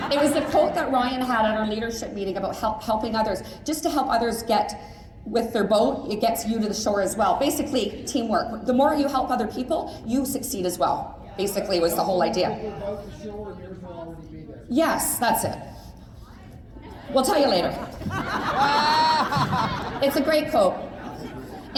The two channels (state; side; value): identical; both; correlation 1.00